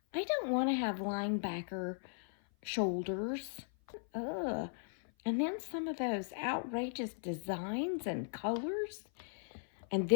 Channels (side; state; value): right; silent; 53 dB below the other